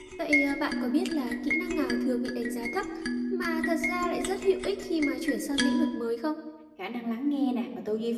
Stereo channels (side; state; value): both; identical; correlation 1.00